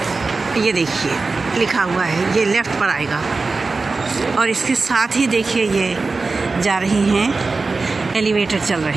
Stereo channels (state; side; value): quieter; left; 3.9 dB